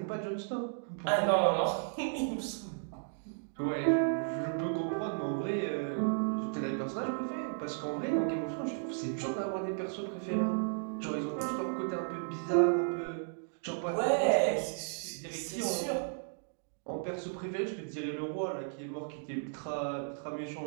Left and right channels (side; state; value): left; silent; digital silence